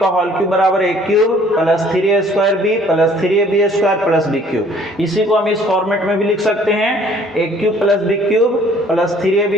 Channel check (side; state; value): both; normal; correlation 0.57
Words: होल क्यूब बराबर a cube plus 3a square b plus 3ab square plus b cube. इसी को हम इस फॉर्मेट में भी लिख सकते हैं a cube plus b cube plus 3ab